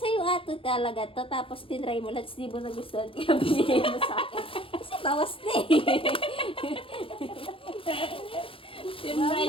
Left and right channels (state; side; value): late; right; 0.26 ms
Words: ato talaga to, tapos tinry mo lang, di mo nagustuhan, kaya binigay mo sa akin. Kasi bawas na eh.